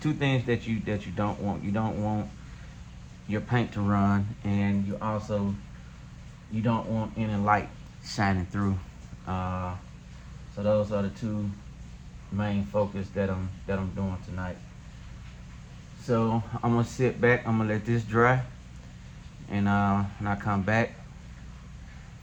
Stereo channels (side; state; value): both; identical; correlation 1.00